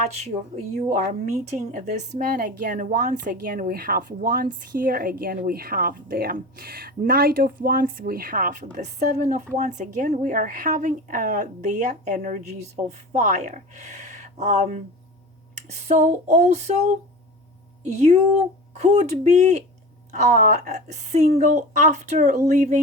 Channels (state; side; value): normal; both; correlation 0.32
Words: You are meeting this man again. Once again we have wands here, again we have the Knight of Wands, we have the Seven of Wands. Again we are having the energies of fire. So also you could be single after